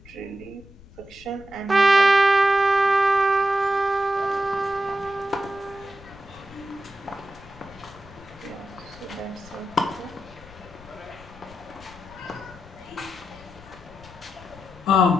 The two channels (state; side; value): noise; left; rumble, 21 dB below the sound